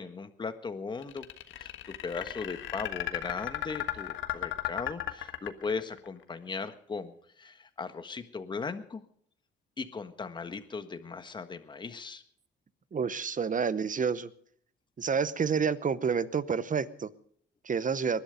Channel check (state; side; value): normal; both; correlation 0.35